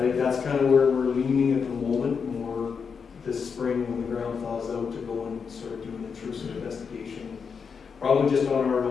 think that's kind of where we're leaning at the moment, more this spring when the ground thaws out, to go and sort of do an intrusive investigation, probably just on our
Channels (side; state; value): right; quieter; 6.0 dB